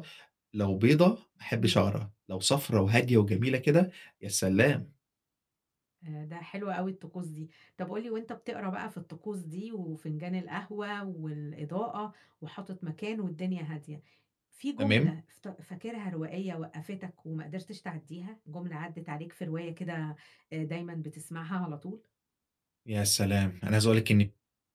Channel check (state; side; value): identical; both; correlation 1.00